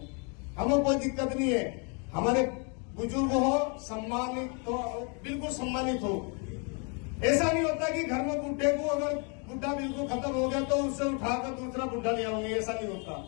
हमें कोई दिक्कत नहीं है, हमारे बुजुर्ग हो, सम्मानित हो, बिल्कुल सम्मानित हो। ऐसा नहीं होता कि घर में बुढ़े को अगर बुढ़ा बिल्कुल खत्म हो गया तो उससे उठाकर दूसरा बुढ़ा ले आओगे, ऐसा नहीं होता।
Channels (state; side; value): quieter; right; 36.0 dB